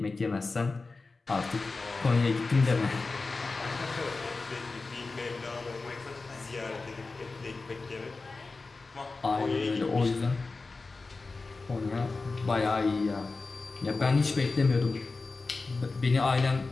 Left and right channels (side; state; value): right; quieter; 3.8 dB